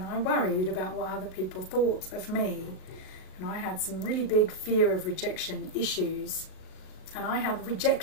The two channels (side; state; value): right; late; 38 ms